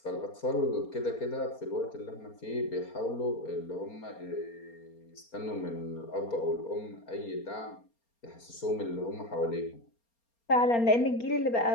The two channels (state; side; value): late; right; 4.3 ms